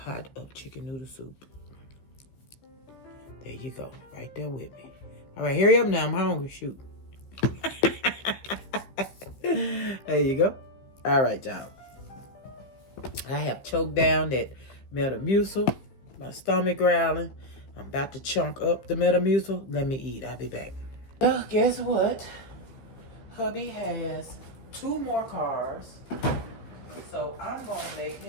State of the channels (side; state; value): right; late; 15 ms